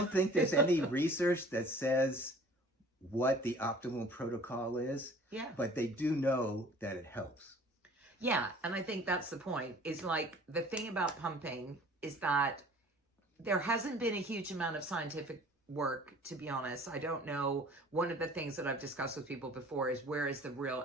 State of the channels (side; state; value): both; normal; correlation 0.49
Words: think there's any research that says what the optimal protocol is, but they do know that it helps. Yeah, and I think that's the point, is like the thing about pumping is that there hasn't been a huge amount of scientific work, to be honest. I don't know. One of the things that I've discussed with people before is, where is the real